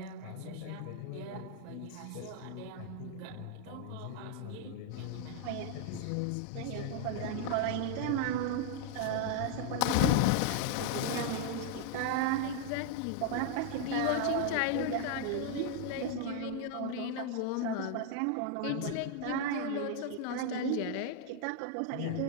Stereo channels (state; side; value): different; both; correlation 0.00